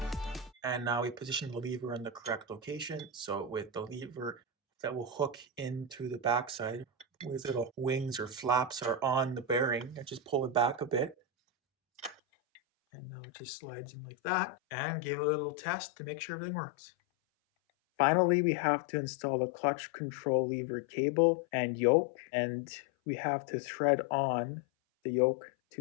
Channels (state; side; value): drops out; right; at 12.2 s